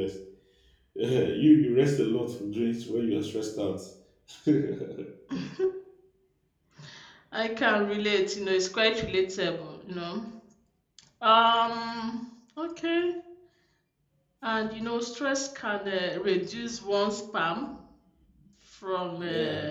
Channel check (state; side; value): identical; both; correlation 1.00